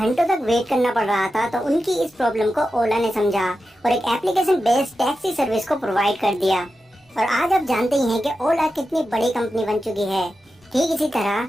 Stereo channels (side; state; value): both; normal; correlation 0.91